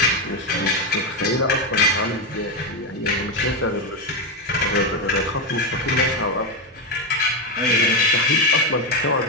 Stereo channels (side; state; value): both; normal; correlation 0.09